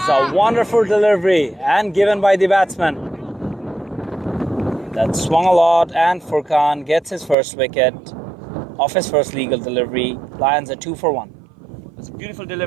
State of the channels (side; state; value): left; drops out; at 7.4 s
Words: a wonderful delivery and given by the batsman. That swung a lot, and Furkan gets his first wicket off his first legal delivery. Lions are 2 for 1. It's a beautiful